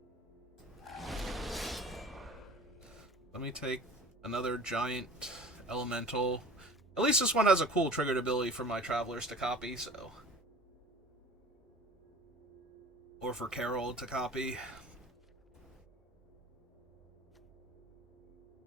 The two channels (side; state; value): both; normal; correlation 0.43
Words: Let me take another giant elemental. At least this one has a cool triggered ability for my travelers to copy, so... Or for Carol to copy.